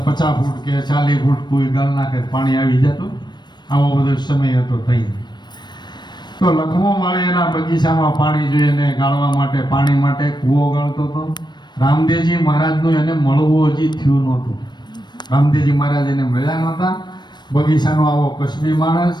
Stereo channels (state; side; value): late; right; 0.21 ms